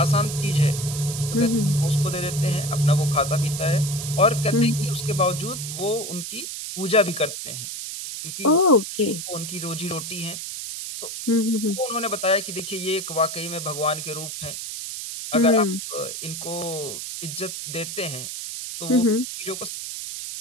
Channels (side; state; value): right; noise; hiss, 7 dB below the sound